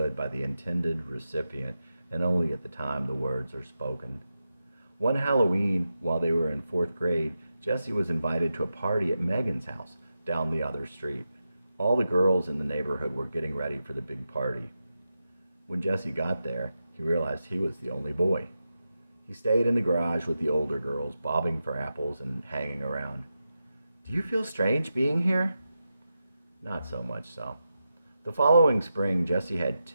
by the intended recipient, and only at the time the words are spoken. One Halloween, while they were in 4th grade, Jesse was invited to a party at Megan's house down the other street. All the girls in the neighborhood were getting ready for the big party. When Jesse got there, he realized he was the only boy. He stayed in the garage with the older girls, bobbing for apples and hanging around. "Do you feel strange being here?" Not so much so. The following spring, Jesse had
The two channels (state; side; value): inverted; both; correlation -0.89